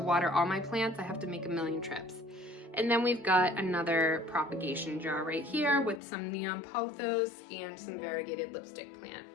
water all my plants, I have to make a million trips. And then we've got another propagation jar right here with some neon pothos and some variegated lipstick plant.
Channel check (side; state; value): right; drops out; at 6.0 s